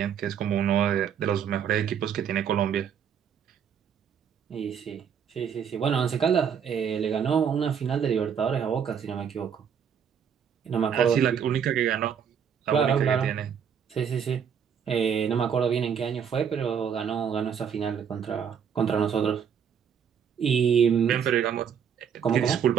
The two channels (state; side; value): quieter; left; 7.8 dB